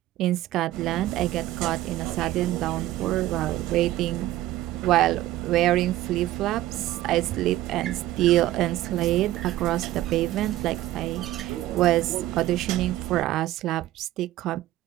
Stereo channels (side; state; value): left; quieter; 15.0 dB